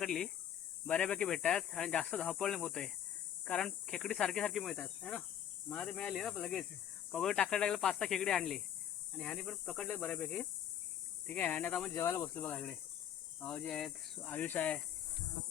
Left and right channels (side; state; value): right; quieter; 10.0 dB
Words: बऱ्यापैकी भेटतात आणि जास्त धावपळ नाही होतंय, कारण खेकडी सारखी सारखी मिळतात है ना. मला ते मिळाली ना लगेच. पगोल टाकायला लागलं, 5-6 खेकडी आणली आणि ह्यानी पण पकडले बऱ्यापैकी. ठीक आहे. आणि आता आपण जेवायला बसलो बघा. इकडे भाऊजी आहेत, आयुष आहे.